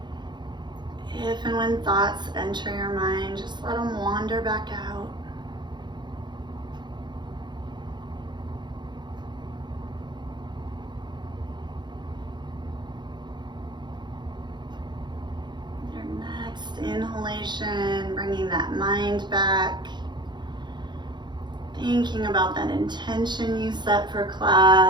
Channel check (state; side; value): late; left; 0.21 ms